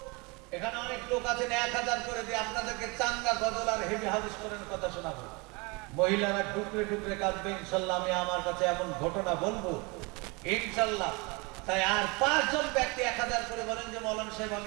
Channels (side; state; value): left; quieter; 28.1 dB